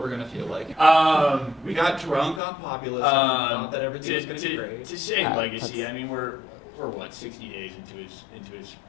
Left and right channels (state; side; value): drops out; right; at 2.4 s